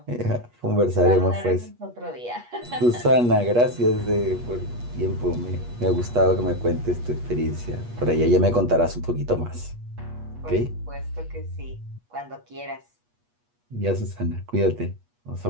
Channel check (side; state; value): left; late; 8.3 ms